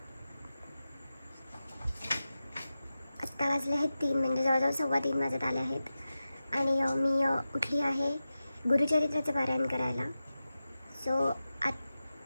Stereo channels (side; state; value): both; inverted; correlation -0.94